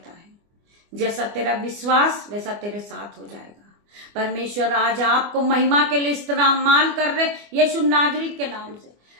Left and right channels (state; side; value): late; left; 24 ms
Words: है? जैसा तेरा विश्वास वैसा तेरे साथ हो जाएगा। परमेश्वर आज आपको महिमा के लिए इस्तेमाल कर रहे यीशु नाजरीत के नाम से।